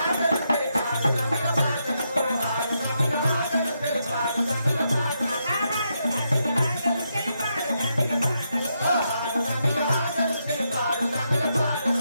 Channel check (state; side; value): inverted; both; correlation -0.81